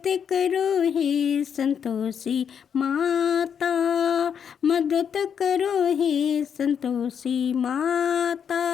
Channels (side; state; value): right; quieter; 7.7 dB